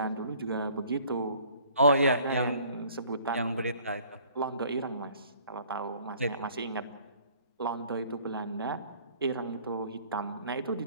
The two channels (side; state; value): both; inverted; correlation -0.55